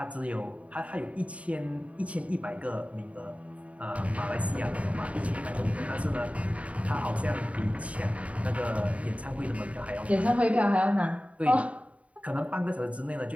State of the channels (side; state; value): left; late; 0.066 ms